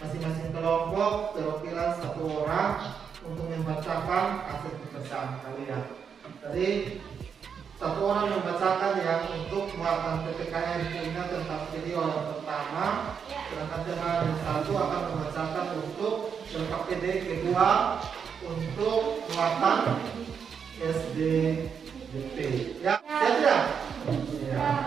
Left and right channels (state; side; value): quieter; left; 6.8 dB